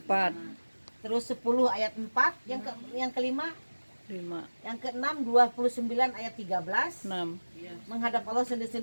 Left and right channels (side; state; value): both; inverted; correlation -1.00